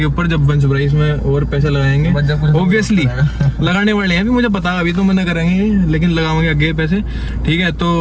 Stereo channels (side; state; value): both; identical; correlation 1.00